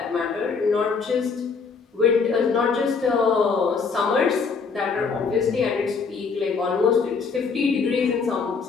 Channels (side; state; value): right; quieter; 5.1 dB